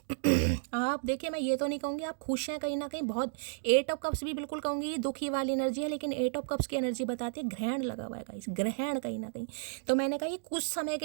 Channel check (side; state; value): left; silent; digital silence